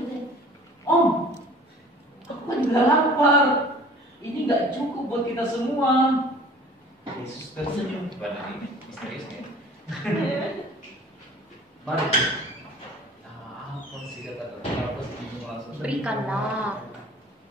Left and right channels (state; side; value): normal; both; correlation 0.47